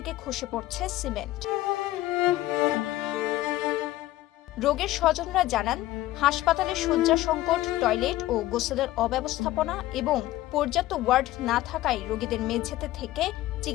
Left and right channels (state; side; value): quieter; right; 15.9 dB